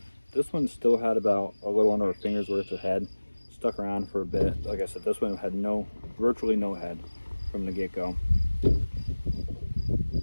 This one still had about a little under a finger's worth of head. Stuck around for a bit. Like I said, this one had virtually no head from the get-go.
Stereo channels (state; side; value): inverted; both; correlation -1.00